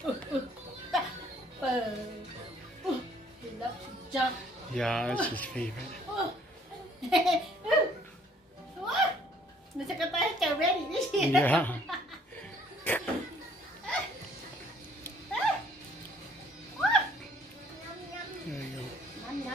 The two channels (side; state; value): both; normal; correlation 0.60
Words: loves to jump. Yeah, that's his favorite. Nó sẽ có tay chào ready đấy chứ. Yeah. There you go. Nhâm